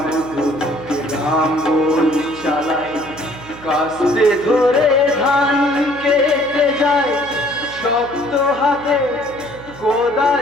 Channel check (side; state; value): right; noise; hum, 18 dB below the sound